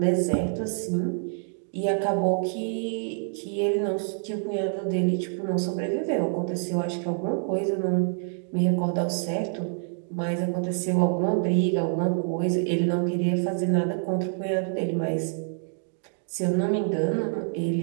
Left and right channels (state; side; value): silent; left; 60 dB below the other